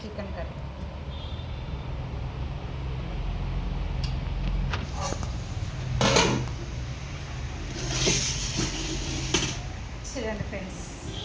కర్రీ. చూడండి ఫ్రెండ్స్,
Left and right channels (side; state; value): both; identical; correlation 1.00